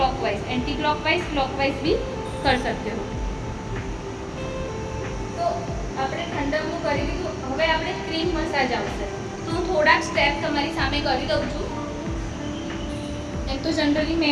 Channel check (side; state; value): both; identical; correlation 1.00